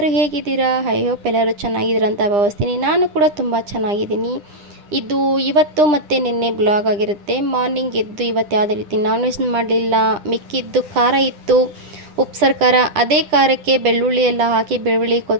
ಹೇಗಿದ್ದೀರಾ? ಐ ಹೋಪ್ ಎಲ್ಲರೂ ಚೆನ್ನಾಗಿದ್ದೀರ ಅಂತ ಭಾವಿಸ್ತೀನಿ. ನಾನು ಕೂಡ ತುಂಬ ಚೆನ್ನಾಗಿದ್ದೀನಿ. ಇದು ಇವತ್ತು ಮತ್ತು ನಿನ್ನೆ ಬ್ಲಾಗ್ ಆಗಿರುತ್ತೆ. ಮಾರ್ನಿಂಗ್ ಎದ್ದು ಇವತ್ತು ಯಾವುದೇ ರೀತಿ ನಾನ್ ವೆಜ್ ಮಾಡಲಿಲ್ಲ. ಮಿಕ್ಕಿದ್ದು ಖಾರ ಇತ್ತು, ಉಪ್ಸಾರು ಖಾರ. ಅದೇ ಖಾರಕ್ಕೆ ಬೆಳ್ಳುಳ್ಳಿ ಎಲ್ಲ ಹಾಕಿ, ಬೆಳ್ಳುಳ್ಳಿ,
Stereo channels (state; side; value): late; left; 9.9 ms